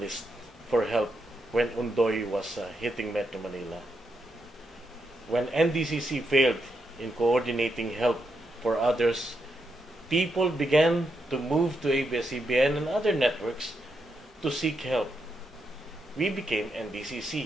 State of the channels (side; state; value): both; normal; correlation 0.82